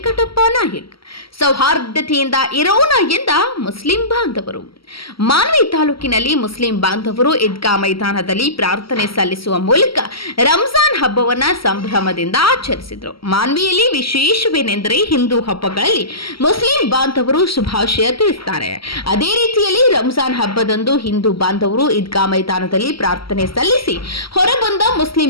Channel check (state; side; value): late; right; 0.75 ms